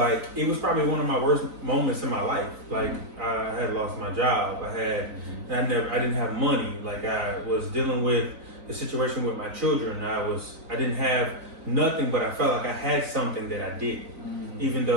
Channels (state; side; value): late; left; 4.0 ms